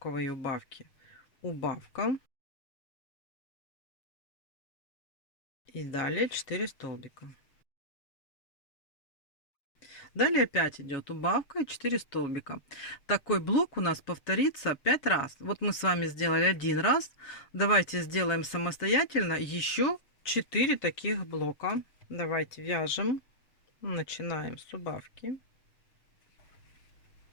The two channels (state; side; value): late; right; 7.2 ms